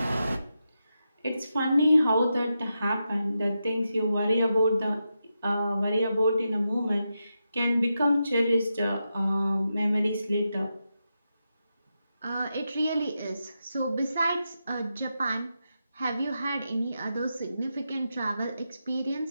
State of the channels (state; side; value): inverted; both; correlation -0.87